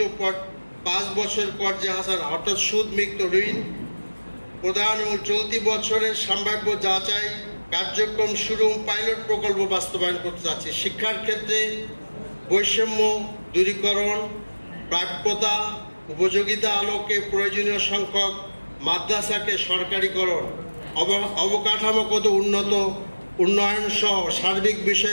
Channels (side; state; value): both; inverted; correlation -1.00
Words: 5 বছর কর্জে হাসান অর্থাৎ সুদমুক্ত ঋণ প্রদান এবং চলতি বছরের সম্ভাব্য যাচাই কার্যক্রম শুরু পাইলট প্রকল্প বাস্তবায়ন করতে যাচ্ছে। শিক্ষার ক্ষেত্রে বৈষম্য দূরীকরণ, প্রাপ্যতা উপযোগিতা আলোকে প্রয়োজনীয় সংখ্যক মাদ্রাসাকে সরকারিকরণ, অবকাঠামোগত উন্নয়ন সহ সার্বিক